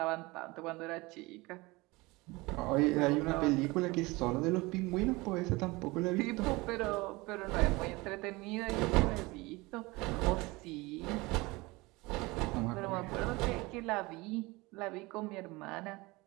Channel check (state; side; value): quieter; left; 23.0 dB